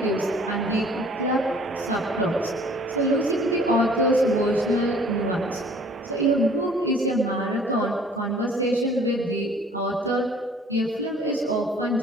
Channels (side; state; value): both; normal; correlation 0.53